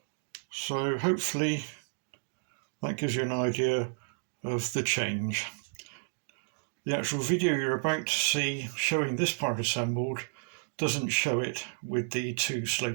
So hopefully that gives you an idea of the change. The actual video you're about to see showing this part assembled doesn't show it with the 2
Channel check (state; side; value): silent; left; digital silence